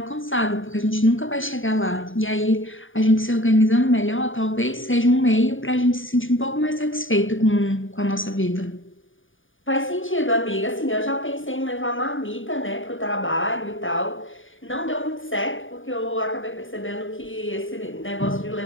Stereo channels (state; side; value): late; right; 0.57 ms